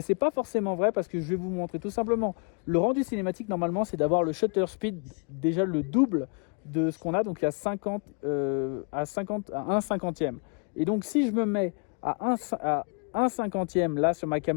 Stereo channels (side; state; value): right; quieter; 38.0 dB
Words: n'est pas forcément vrai parce que je vais vous montrer tout simplement. Le rendu cinématique, normalement, c'est d'avoir le shutter speed déjà le double de ce qu'on a. Donc il y a 50, à 1 cinquantième. Et donc si je me mets à 1 cinquantième là sur ma